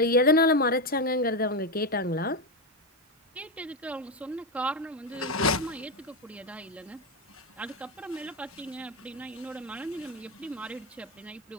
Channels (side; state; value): both; normal; correlation 0.10